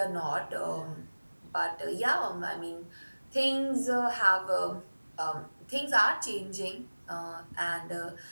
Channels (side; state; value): both; inverted; correlation -1.00